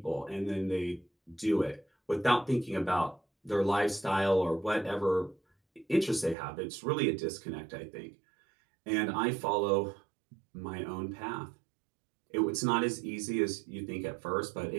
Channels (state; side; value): drops out; left; at 6.4 s